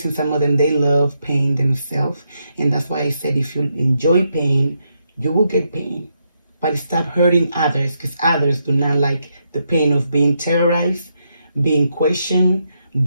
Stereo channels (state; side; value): inverted; both; correlation -0.80